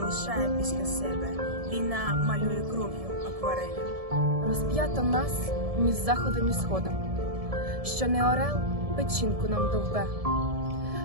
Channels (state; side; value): late; left; 1.7 ms